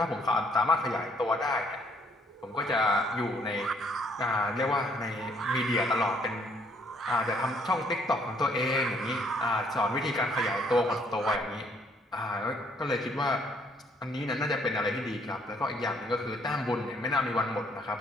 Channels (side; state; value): both; normal; correlation 0.65